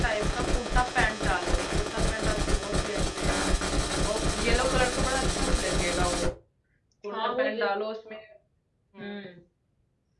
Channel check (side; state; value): both; identical; correlation 1.00